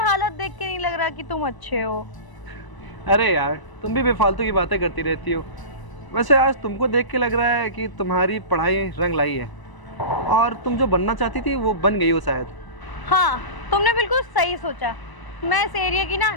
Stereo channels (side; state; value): right; late; 1.0 ms